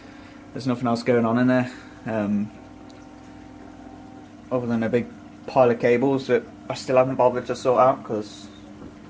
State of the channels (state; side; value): identical; both; correlation 1.00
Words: There's nothing else going on in there, other than a big pile of cables that I still haven't bothered to sort out because